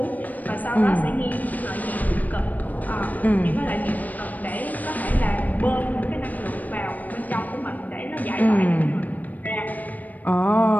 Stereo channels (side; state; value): right; late; 0.080 ms